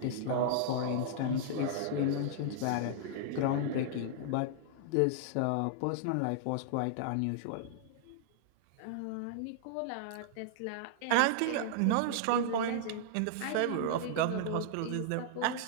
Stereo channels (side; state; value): both; different; correlation -0.01